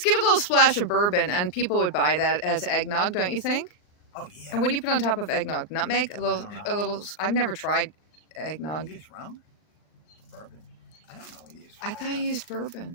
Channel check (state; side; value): late; right; 39 ms